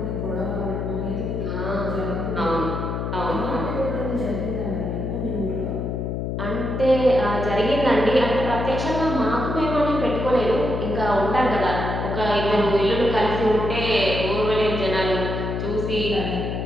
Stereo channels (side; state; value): left; noise; hum, 3 dB below the sound